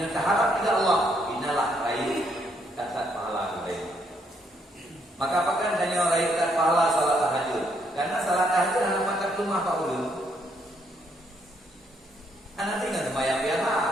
ridha Allah, inalah raih kasat pahala kebaikan. Maka apakah adanya raih kasat pahala salat tahajud? Karena salat tahajud adalah makan rumah Pak Ulu. Anak tinggal sembahyang biasa.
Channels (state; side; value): normal; both; correlation 0.72